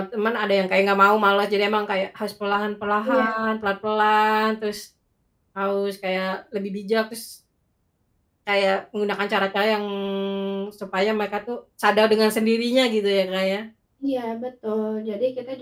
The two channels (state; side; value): identical; both; correlation 1.00